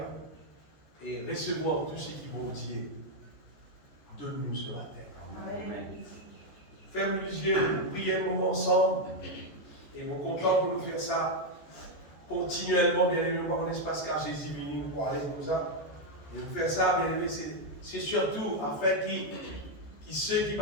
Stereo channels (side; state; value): right; late; 14 ms